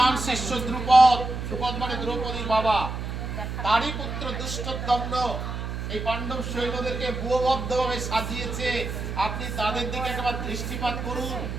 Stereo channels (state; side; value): noise; right; hum, 5 dB below the sound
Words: শিষ্য দ্রুপদ, দ্রুপদ মানে দ্রৌপদীর বাবা, তারই পুত্র দুষ্টদম্ন এই পাণ্ডব সৈন্যদেরকে ব্যুহবদ্ধভাবে সাজিয়েছে। আপনি তাদের দিকে একবার দৃষ্টিপাত করুন,